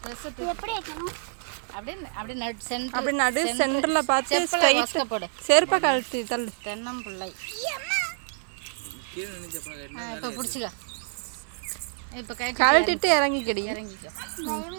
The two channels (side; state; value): left; silent; 60 dB below the other